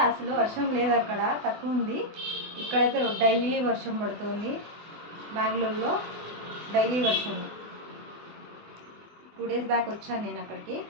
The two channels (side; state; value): left; late; 24 ms